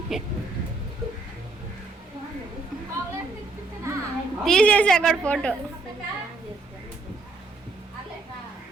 తీసేసి అక్కడ ఫోటో.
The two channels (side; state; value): left; quieter; 3.5 dB